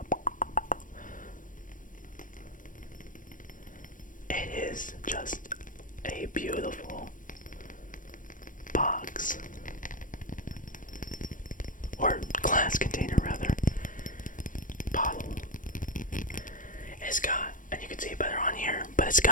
It is just a beautiful box, or glass container rather, bottle. It's got, and you can see it better on here, but it's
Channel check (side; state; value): right; late; 0.38 ms